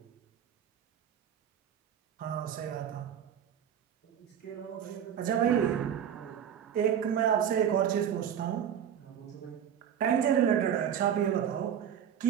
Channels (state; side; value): quieter; left; 9.1 dB